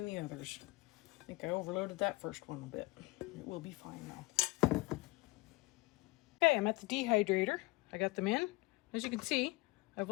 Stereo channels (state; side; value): quieter; right; 22.3 dB